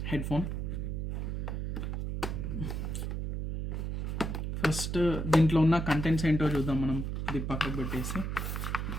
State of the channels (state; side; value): noise; right; hum, 2 dB below the sound